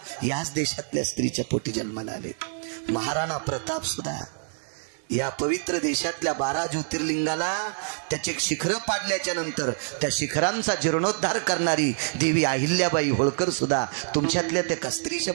याच देशातल्या स्त्रीच्या पोटी जन्माला आलेत. महाराणा प्रताप सुद्धा या पवित्र देशातल्या 12 ज्योतिर्लिंगाला त्याचे शिखरं पाडल्याच्या नंतर त्या शिखरांचा जीर्णोद्धार करणारी देवी अहिल्याबाई होळकर सुद्धा तुमच्यातल्या त्या स्त्रीच्या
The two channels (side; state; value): left; silent; digital silence